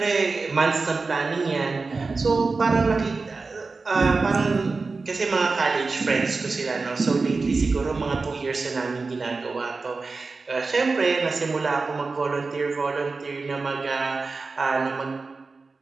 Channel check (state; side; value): quieter; left; 4.0 dB